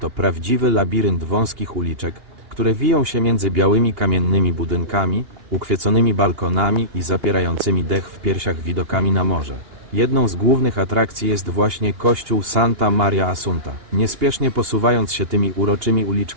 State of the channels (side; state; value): left; late; 2.8 ms